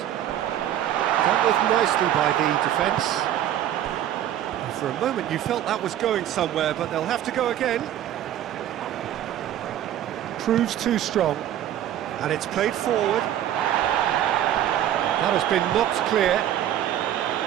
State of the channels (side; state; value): left; quieter; 11.5 dB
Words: Dealt with nicely by the defence. And for a moment you felt that was going somewhere, but they'll have to go again. Proves too strong. And it's played forward. That has been knocked clear.